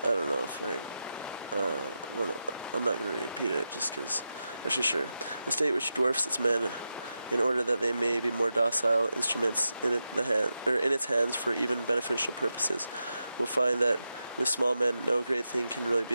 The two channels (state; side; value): inverted; both; correlation -0.89